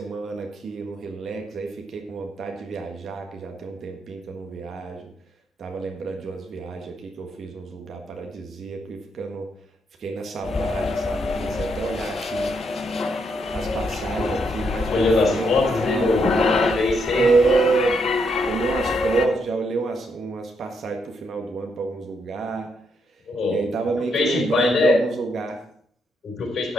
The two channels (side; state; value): both; normal; correlation 0.77